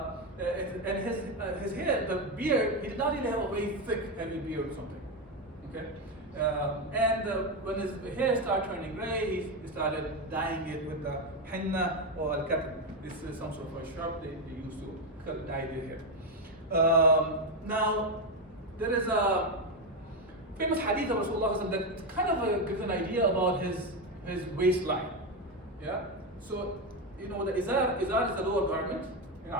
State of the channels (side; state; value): both; normal; correlation 0.09